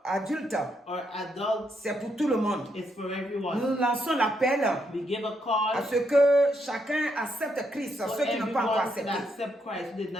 adultes, or adults. c'est pour tout le monde. It's for everyone. Nous lançons l'appel We give a à call ce que chacun accepte Christ, for ceux qui n'ont pas encore everyone to accepté, accept Christ who did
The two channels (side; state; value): both; normal; correlation 0.77